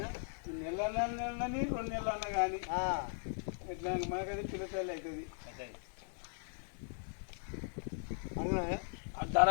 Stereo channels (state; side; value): silent; right; 52 dB below the other